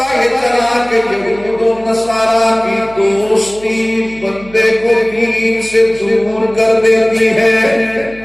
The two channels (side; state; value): right; noise; hum, 21 dB below the sound